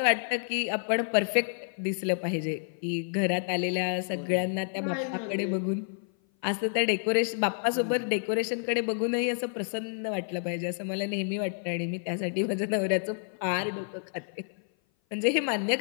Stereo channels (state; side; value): silent; right; 56 dB below the other